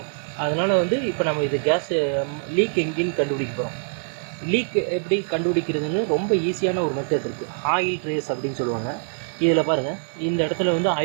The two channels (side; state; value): left; silent; 61 dB below the other